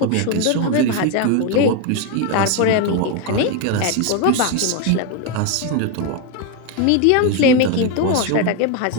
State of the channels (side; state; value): both; different; correlation 0.02